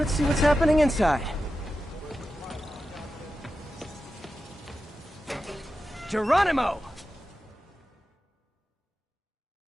see what's happening inside. Geronimo!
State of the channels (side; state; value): both; normal; correlation 0.91